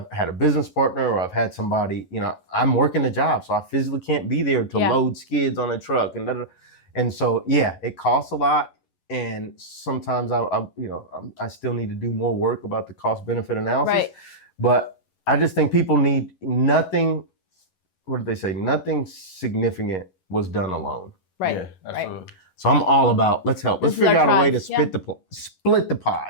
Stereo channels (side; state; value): right; late; 11 ms